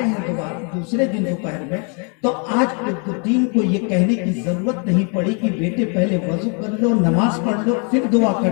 ہیں دوسرے دن دوپہر میں تو آج قطبالدین کو یہ کہنے کی ضرورت نہیں پڑی کہ بیٹے پہلے وضو کر لو, نماز پڑھ لو, پھر دعا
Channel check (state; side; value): quieter; right; 37.4 dB